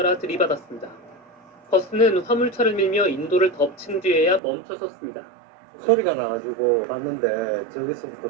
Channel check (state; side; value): drops out; left; at 4.4 s